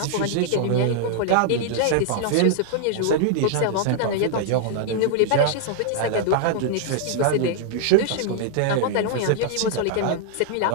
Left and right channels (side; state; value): both; different; correlation 0.00